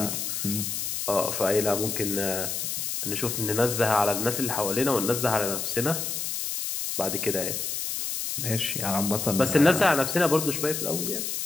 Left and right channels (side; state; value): left; noise; hiss, 3 dB below the sound